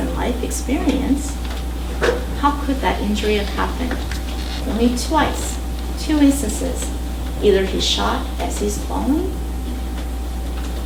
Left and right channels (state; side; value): identical; both; correlation 1.00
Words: life experience, how could that injury have happened? Only twice, 2 instances. Either he's shot as he's falling,